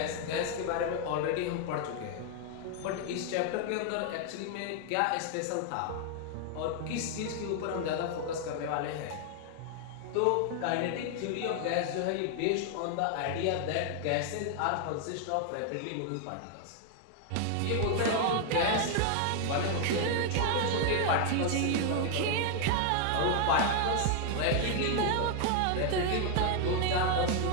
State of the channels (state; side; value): different; both; correlation 0.00